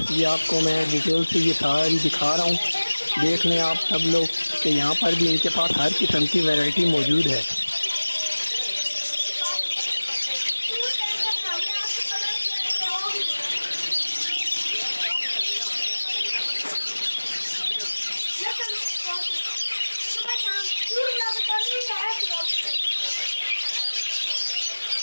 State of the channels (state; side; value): inverted; both; correlation -1.00